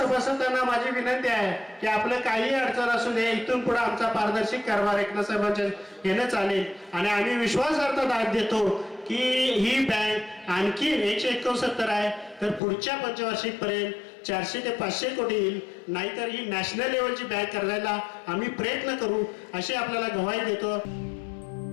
माझी विनंती आहे की आपलं काही अडचण असू दे, इथून पुढे आमचा पारदर्शी कारभार एकनाथ साहेबांच्या येणं चालेल. आणि आम्ही विश्वासार्थ दाद देतो की ही बँक आणखी 169 आहे, तर पुढच्या पंचवार्षिक पर्यंत 400 ते 500 कोटी येईल. नाहीतर ही नॅशनल लेवलची बँक करायला आम्ही प्रयत्न करू, अशी आपल्याला ग्वाही देतो.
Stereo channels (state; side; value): drops out; right; at 12.6 s